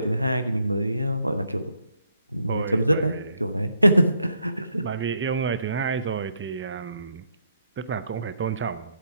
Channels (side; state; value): both; inverted; correlation -0.75